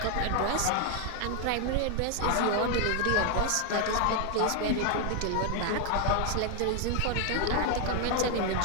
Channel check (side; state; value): both; different; correlation 0.00